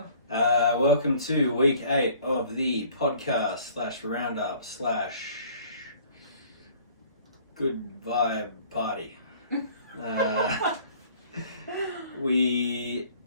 Welcome to week 8 of the podcast / roundup / good vibe party. We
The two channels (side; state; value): both; inverted; correlation -0.53